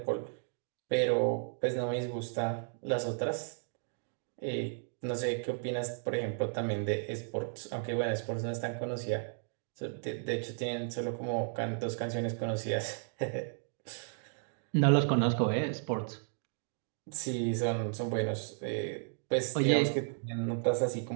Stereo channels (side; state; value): left; silent; digital silence